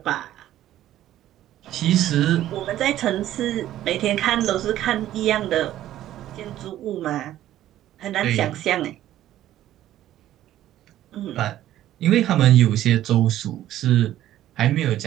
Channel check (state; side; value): quieter; left; 13.0 dB